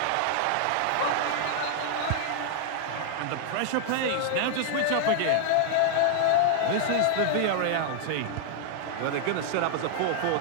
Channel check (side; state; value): both; different; correlation -0.01